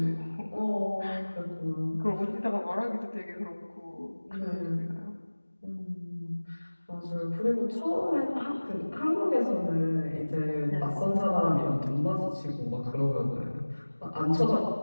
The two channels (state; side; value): inverted; both; correlation -1.00